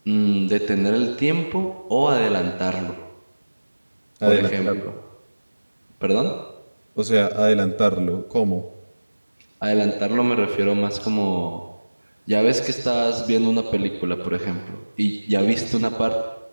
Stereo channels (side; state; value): both; inverted; correlation -1.00